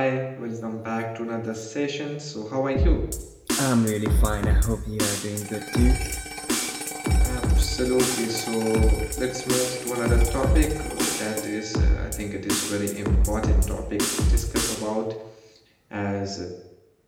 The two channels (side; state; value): both; identical; correlation 1.00